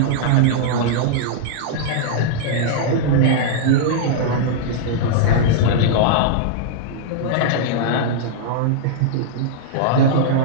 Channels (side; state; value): both; different; correlation -0.02